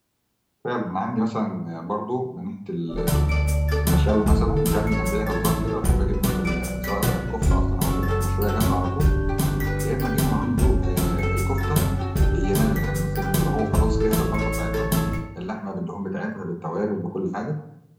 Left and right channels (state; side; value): identical; both; correlation 1.00